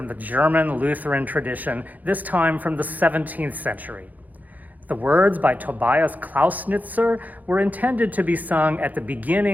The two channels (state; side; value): late; left; 0.081 ms